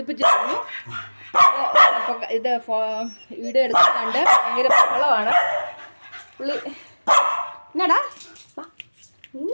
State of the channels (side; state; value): both; inverted; correlation -1.00